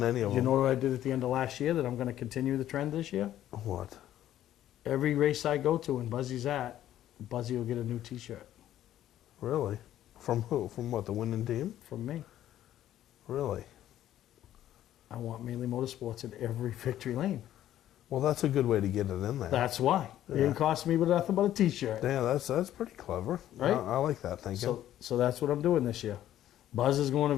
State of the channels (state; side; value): quieter; right; 12.4 dB